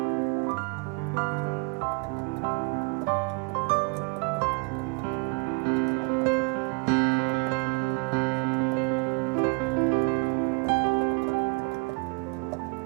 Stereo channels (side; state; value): left; quieter; 32.3 dB